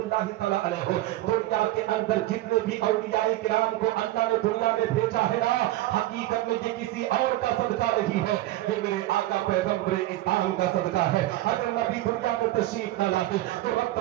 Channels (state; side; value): quieter; left; 16.0 dB